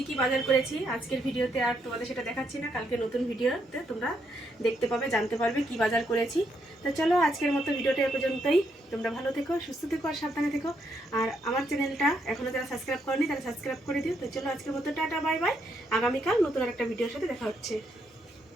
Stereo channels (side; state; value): both; normal; correlation 0.77